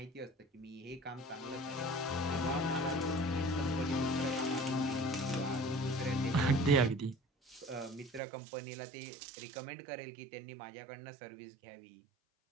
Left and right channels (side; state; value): left; drops out; at 8.2 s